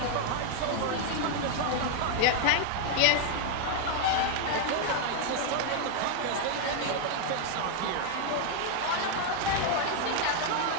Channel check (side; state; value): both; different; correlation 0.00